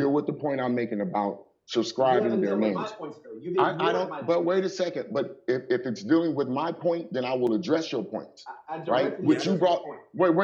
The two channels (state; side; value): identical; both; correlation 1.00